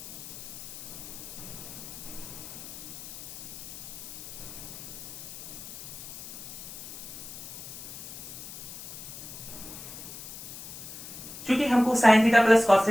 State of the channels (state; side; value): noise; left; hiss, 12 dB below the sound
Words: क्योंकि हमको sine theta plus cos